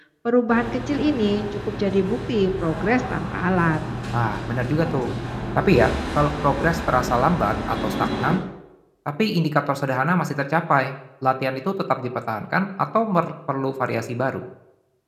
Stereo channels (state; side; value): identical; both; correlation 1.00